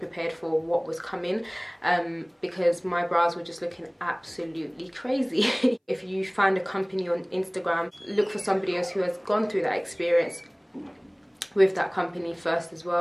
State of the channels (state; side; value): identical; both; correlation 1.00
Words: for what was coming, because my brows were just looking absolutely crazy. If you find a company on Instagram, look for somebody else who has gone through that experience with that company first as